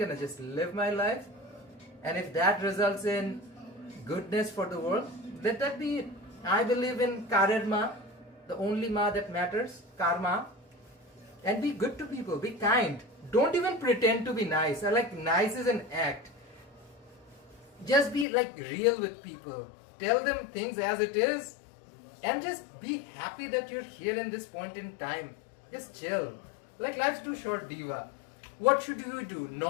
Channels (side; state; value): right; drops out; at 18.2 s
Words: just live my life. And if that results in goodness for the world, let that be it. I believe in karma, the only ma that matters, karma. And be good to people, be kind. Don't even pretend to be nice. I like nice is an act. Just be like real with people. Tell them things as it is. And just be happy that you're here in this point in time. Just chill. Like, life's too short, Diva. What should you do?